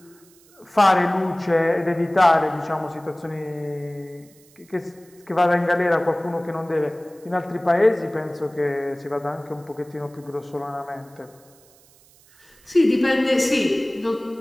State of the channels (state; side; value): noise; right; hiss, 28 dB below the sound